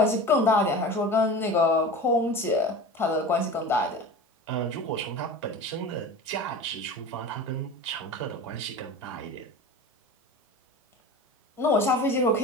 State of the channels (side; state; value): both; normal; correlation 0.34